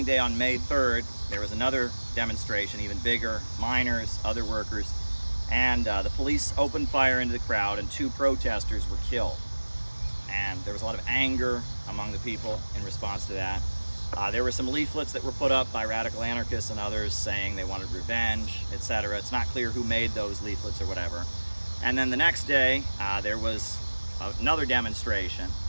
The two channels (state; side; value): inverted; both; correlation -1.00